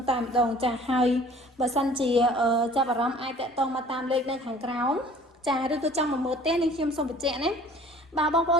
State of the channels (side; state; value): both; normal; correlation 0.50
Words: តែម្ដងចាហើយបើសិនជាចាប់អារម្មណ៍អាចតាក់ទងមកតាមលេខនៅខាងក្រោមចាឬក៏ចង់មកមើលផ្ទះនេះខ្ញុំសូមបញ្ជាក់ណាបើបងប្អូ